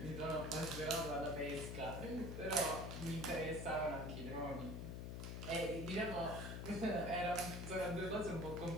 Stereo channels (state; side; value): noise; left; hum, 5 dB below the sound